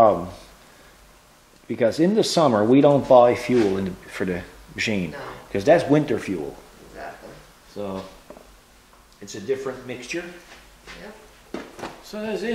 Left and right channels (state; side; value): identical; both; correlation 1.00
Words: Because in the summer we don't buy fuel for the machine, because that's winter fuel. Exactly. So it's a different mixture. Yep. So that's